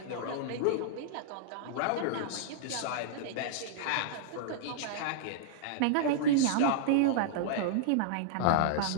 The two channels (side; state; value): both; different; correlation -0.01